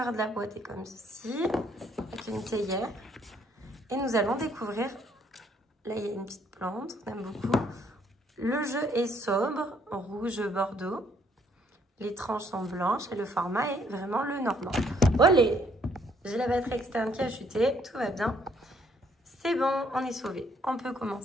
de la boîte est comme ceci, avec une théière. Et nous allons découvrir, là il y a une petite plante, on aime beaucoup. Le jeu est sobre, rouge bordeaux. Les tranches sont blanches et le format est vraiment le normand. Olé! J'ai la batterie externe qui a chuté, tout va bien. C'est bon, on est sauvé. On peut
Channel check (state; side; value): normal; both; correlation 0.66